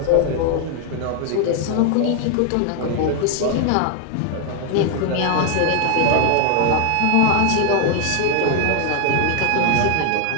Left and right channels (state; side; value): different; both; correlation 0.00